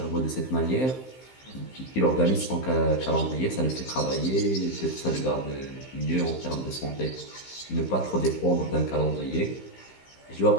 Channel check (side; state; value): right; late; 15 ms